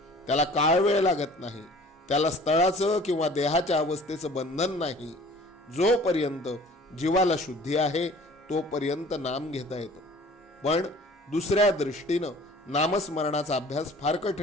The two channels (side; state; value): both; normal; correlation 0.48